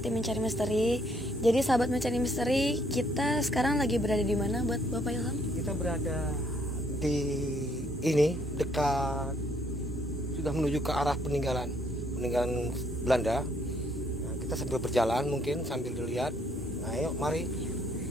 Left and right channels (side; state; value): both; normal; correlation 0.68